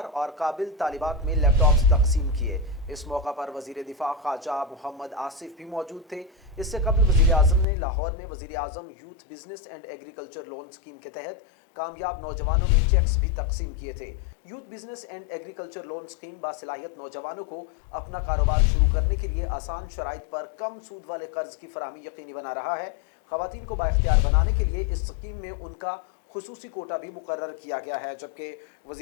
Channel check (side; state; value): right; drops out; at 7.7 s